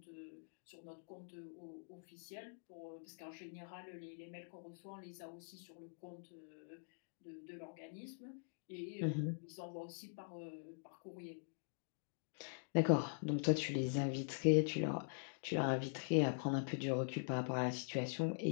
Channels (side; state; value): right; silent; digital silence